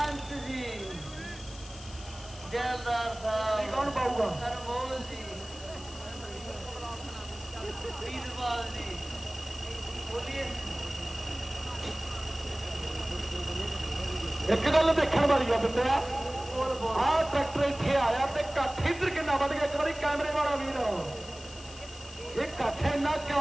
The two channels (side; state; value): left; noise; hiss, 17 dB below the sound